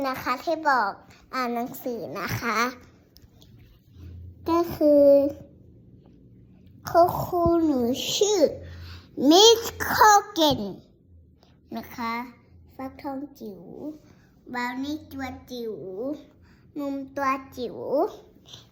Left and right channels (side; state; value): both; identical; correlation 1.00